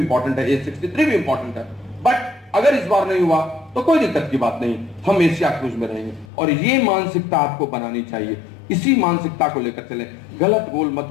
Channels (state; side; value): drops out; right; at 6.2 s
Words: है, A63 भी इंपॉर्टेंट है। बट अगर इस बार नहीं हुआ तो कोई दिक्कत की बात नहीं, हम एशिया क्रूज में रहेंगे। और ये मानसिकता आपको बनानी चाहिए, इसी मानसिकता को लेकर चलें, गलत गोल मत